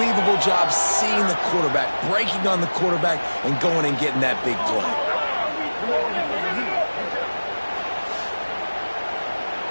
job seeing the quarterback, breaking on the quarterback, and going and getting that big play.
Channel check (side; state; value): both; inverted; correlation -1.00